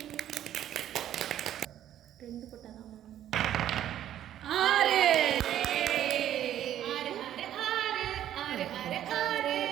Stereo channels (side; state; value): left; quieter; 11.4 dB